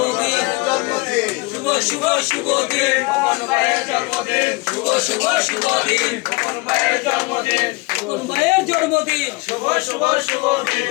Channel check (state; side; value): quieter; right; 26.0 dB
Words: শুভ শুভ শুভ দিন খোকন ভাইয়ের জন্মদিন শুভ শুভ শুভ দিন খোকন ভাইয়ের জন্মদিন খোকন ভাইয়ের জন্মদিন শুভ শুভ শুভ